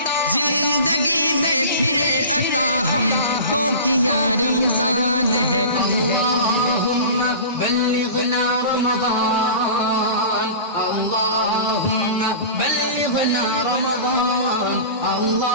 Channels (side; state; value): both; inverted; correlation -0.36